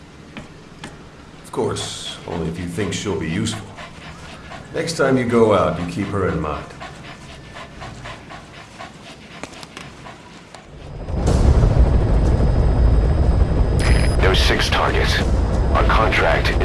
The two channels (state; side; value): identical; both; correlation 1.00